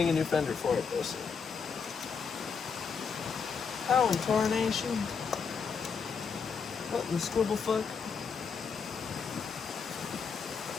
a new fender for it though soon. How in tarnation? What in the scribble fuck?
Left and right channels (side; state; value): right; quieter; 5.8 dB